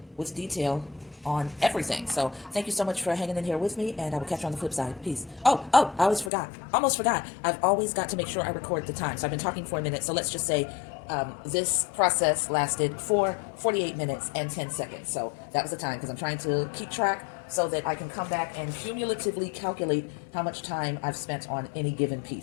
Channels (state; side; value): drops out; right; at 6.3 s